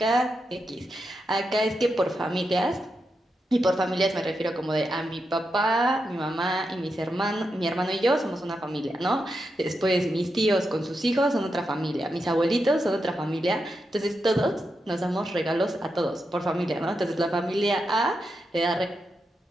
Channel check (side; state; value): both; normal; correlation 0.86